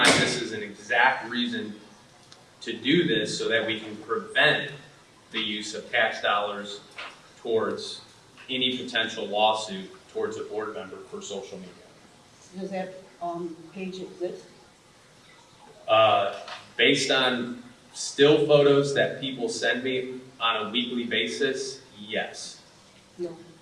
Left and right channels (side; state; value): both; identical; correlation 1.00